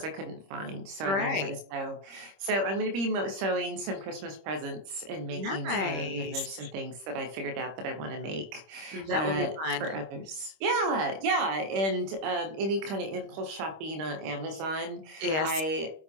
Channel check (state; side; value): late; left; 26 ms